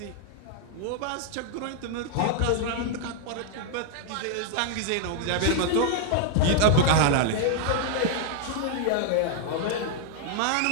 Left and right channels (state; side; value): different; both; correlation 0.00